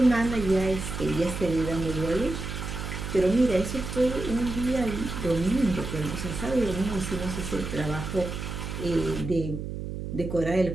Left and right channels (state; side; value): noise; right; hum, 6 dB below the sound